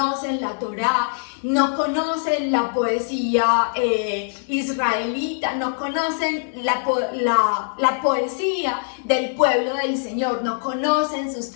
la Torá, no conocen la poesía israelita, no conocen la poesía del pueblo del Señor, no conocen sus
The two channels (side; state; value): right; silent; digital silence